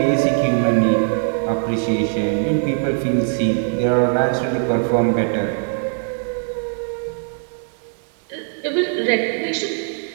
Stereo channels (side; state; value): left; silent; digital silence